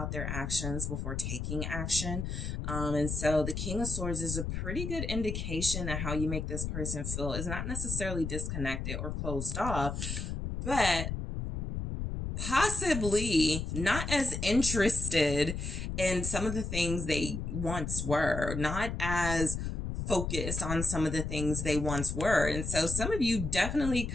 their actions before taking action. And so the King of Swords is a pretty good indication that how you make this person feel is not necessarily disconnected or closed off, but possibly not as interested in some of the things they once were, not as focused on some of the things they once were. And so some of you definitely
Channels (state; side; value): noise; left; rumble, 4 dB below the sound